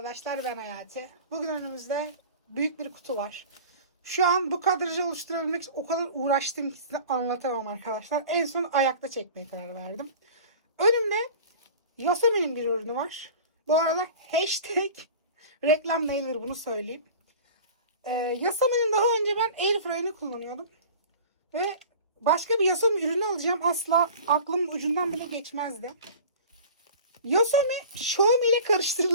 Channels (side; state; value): both; inverted; correlation -0.40